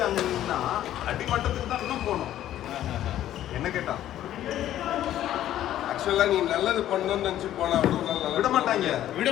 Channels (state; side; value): quieter; right; 12.4 dB